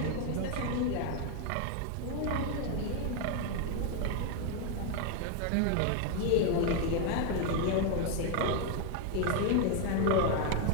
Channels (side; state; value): both; different; correlation 0.01